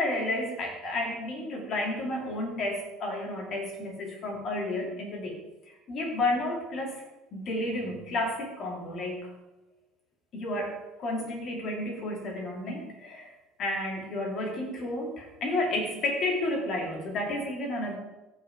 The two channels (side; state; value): both; normal; correlation 0.47